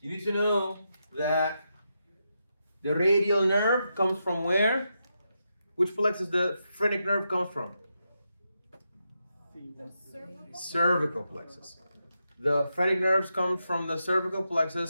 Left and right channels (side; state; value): both; inverted; correlation -0.85